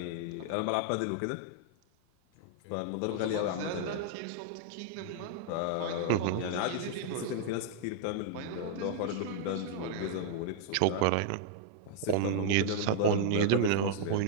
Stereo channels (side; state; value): both; different; correlation -0.01